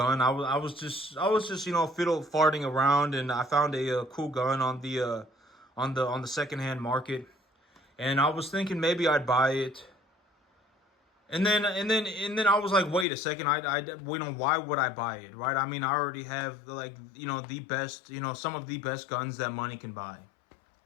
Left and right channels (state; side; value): drops out; right; at 13.1 s